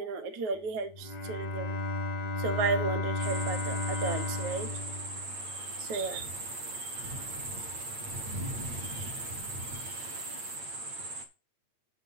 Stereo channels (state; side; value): late; left; 8.8 ms